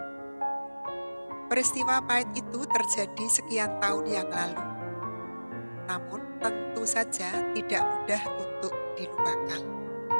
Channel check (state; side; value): inverted; both; correlation -1.00